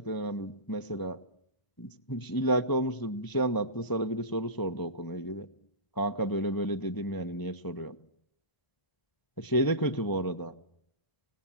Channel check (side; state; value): right; late; 1.0 ms